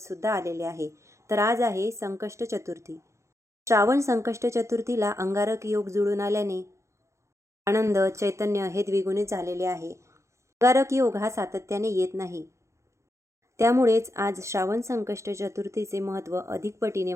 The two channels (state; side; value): late; left; 0.14 ms